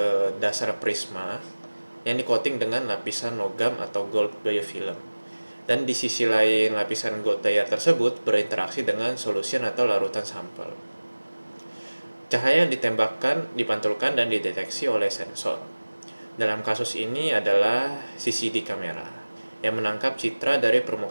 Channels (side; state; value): both; inverted; correlation -1.00